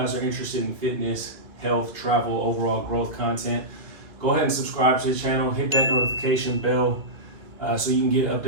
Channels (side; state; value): left; late; 2.4 ms